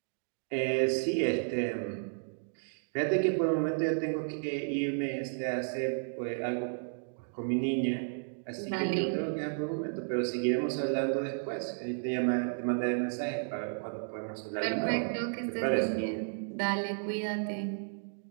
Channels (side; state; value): left; silent; digital silence